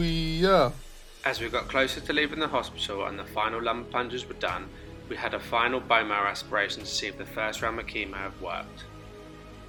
As we got closer to leaving the hospital and the final lumbar plunges were done, we had a final bone marrow aspiration to see if the first round of chemo had worked.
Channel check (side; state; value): both; identical; correlation 1.00